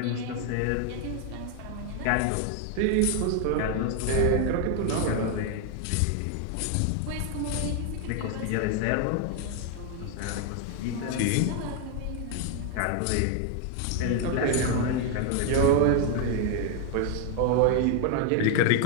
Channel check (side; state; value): both; different; correlation 0.01